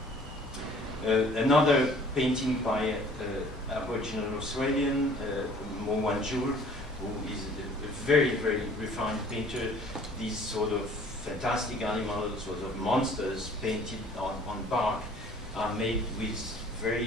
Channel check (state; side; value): normal; both; correlation 0.53